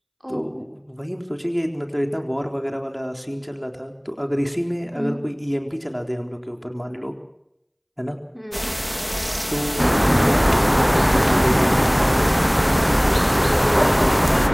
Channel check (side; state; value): both; identical; correlation 1.00